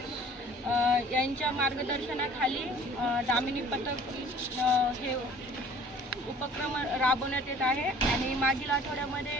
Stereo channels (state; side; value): normal; both; correlation 0.50